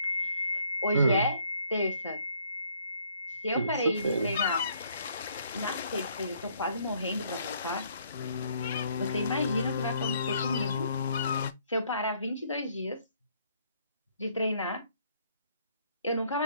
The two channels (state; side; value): inverted; both; correlation -0.65